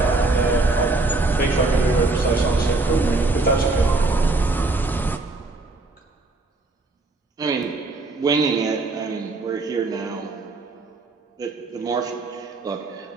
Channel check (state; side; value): quieter; left; 3.3 dB